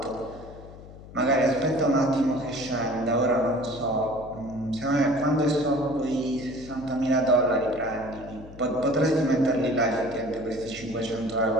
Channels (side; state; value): left; noise; hum, 17 dB below the sound